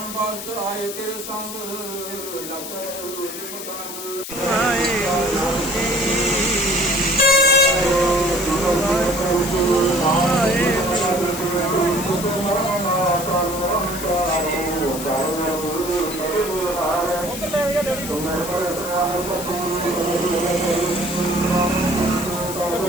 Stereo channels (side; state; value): left; noise; hiss, 9 dB below the sound